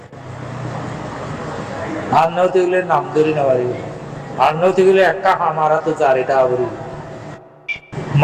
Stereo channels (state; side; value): identical; both; correlation 1.00